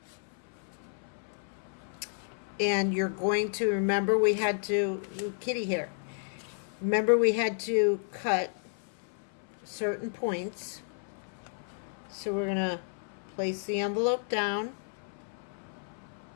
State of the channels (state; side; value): silent; right; 56 dB below the other